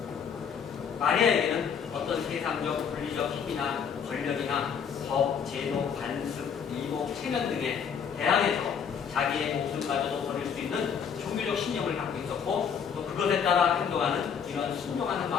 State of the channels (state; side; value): quieter; right; 7.1 dB